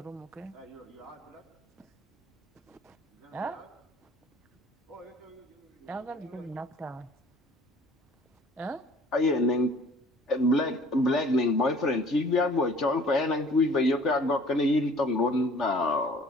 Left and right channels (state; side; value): normal; both; correlation 0.52